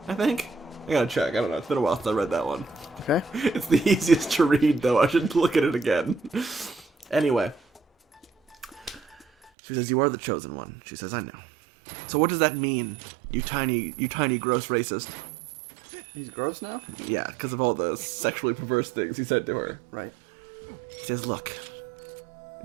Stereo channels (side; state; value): left; drops out; at 9.5 s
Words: I think. I gotta check. I don't know. It's been a while since I read that one. Okay. It's the easiest to read, though. I should look at it again. Anyway. She says, you are the chosen one. She says, I know. So what does that mean, you tiny gross racist? He's gross now? Yeah, because of all the sexually perverse things he said to her. Right. He says, look,